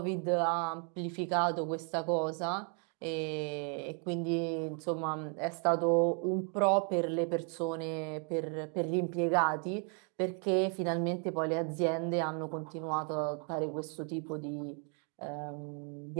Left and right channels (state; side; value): quieter; left; 39.7 dB